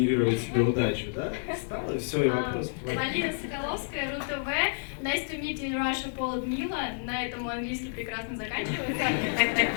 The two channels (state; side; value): silent; right; digital silence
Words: себе удачу, да? Встал, и все, и вопрос твой. Полина Соколовская, РУ-ТВ. Nice to meet you in Russia, Paul and Милла. На этом мой английский прекрасно заканчивается.